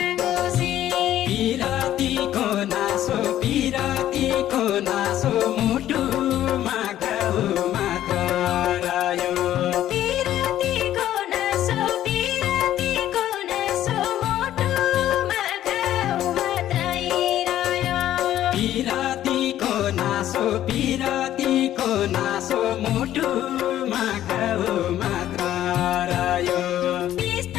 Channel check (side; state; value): right; quieter; 12.4 dB